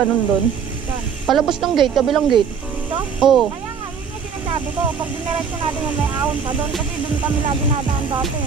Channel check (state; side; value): quieter; left; 6.6 dB